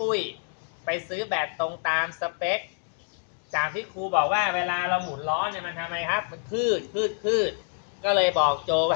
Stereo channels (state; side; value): silent; right; digital silence